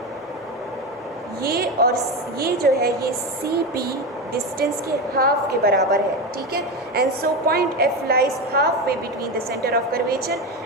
ये और ये जो है ये सी पी डिस्टेंस के हाफ के बराबर है, ठीक है। And so point F lies half way between the centre of curvature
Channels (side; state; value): both; normal; correlation 0.18